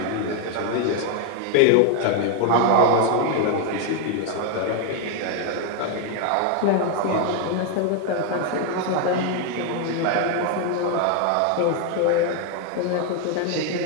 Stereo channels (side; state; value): both; different; correlation 0.01